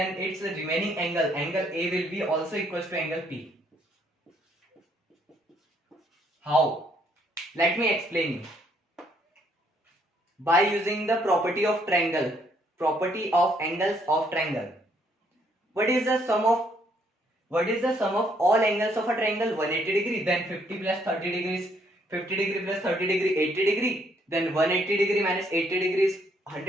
its remaining angle A will be also equals to angle P. How? Let me explain you. By using the property of triangle, property of angles of triangle. What is the sum of all angles of a triangle? 180 degree. Then 50 plus 30 degrees, 50 degree plus 30 degree, 80 degree. Then 180 degree minus 80 degrees,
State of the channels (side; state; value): both; normal; correlation 0.69